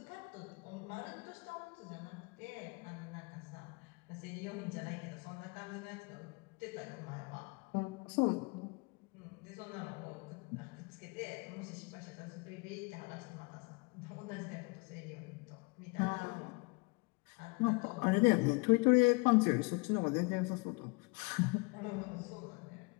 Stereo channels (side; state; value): right; quieter; 29.3 dB